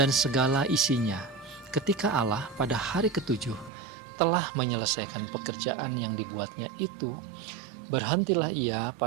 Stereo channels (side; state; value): left; drops out; at 3.7 s